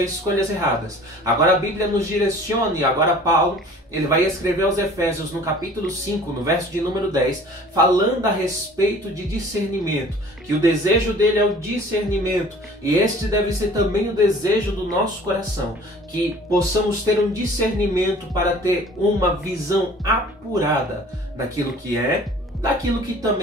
escolhas erradas. Agora a Bíblia nos direciona, e agora Paulo ele vai escrever aos Efésios no capítulo 5, no verso de número 10, falando a respeito de discernimento, que o desejo dele é o discernimento, e este deve ser também o desejo do nosso coração, que possamos ter um discernimento para ter uma visão apurada daquilo que é, daquilo que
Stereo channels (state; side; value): normal; both; correlation 0.48